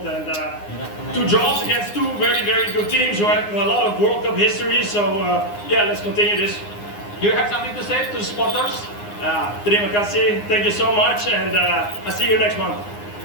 two draws against two very, very good teams who have a lot of World Cup history. So yeah, let's continue this. Do you have something to say to the supporters? Terima kasih, thank you so much, and I'll see you next month.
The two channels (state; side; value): late; right; 9.7 ms